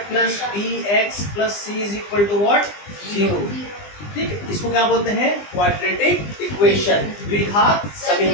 plus bx plus c is equal to what, 0, ठीक है। इसको क्या बोलते हैं, क्वाड्रेटिक इक्वेशन, द्विघात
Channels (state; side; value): late; right; 20 ms